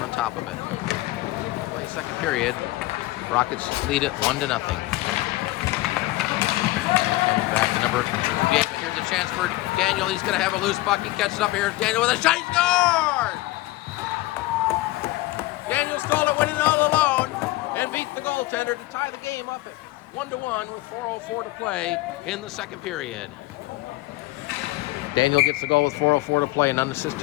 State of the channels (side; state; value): right; quieter; 18.6 dB